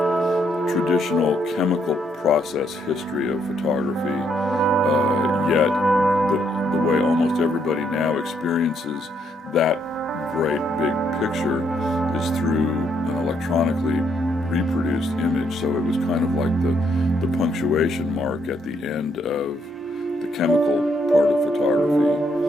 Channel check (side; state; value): both; normal; correlation 0.73